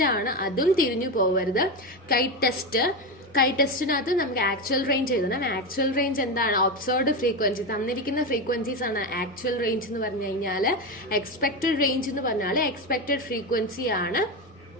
ആണ്. അതും തിരിഞ്ഞു പോകരുത്. കൈ ടെസ്റ്റിനകത്ത് നമുക്ക് ആക്ച്വൽ റേഞ്ച് എഴുതണം. ആക്ച്വൽ റേഞ്ച് എന്താണ്? Observed frequency. തന്നിരിക്കുന്ന ഫ്രീക്വൻസീസ് ആണ് ആക്ച്വൽ റേഞ്ച് എന്ന് പറഞ്ഞു കഴിഞ്ഞാൽ. എക്സ്പെക്ടഡ് റേഞ്ച് എന്ന് പറഞ്ഞാൽ എക്സ്പെക്ടഡ് ഫ്രീക്വൻസി ആണ്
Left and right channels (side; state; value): both; normal; correlation 0.15